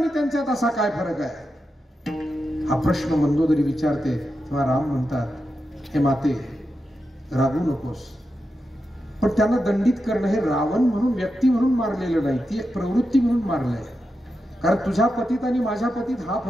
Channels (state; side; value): normal; both; correlation 0.88